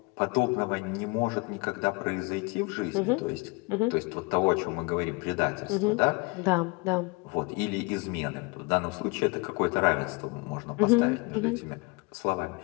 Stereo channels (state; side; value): quieter; right; 28.4 dB